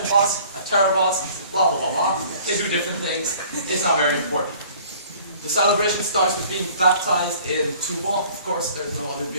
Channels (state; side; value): inverted; both; correlation -0.52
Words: boss, a terror boss, blah blah blah blah. They do different things. It's not very important. The celebration starts with being baptized in Tuba. Of course, there's no other